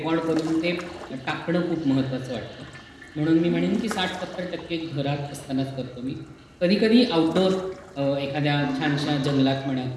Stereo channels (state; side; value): identical; both; correlation 1.00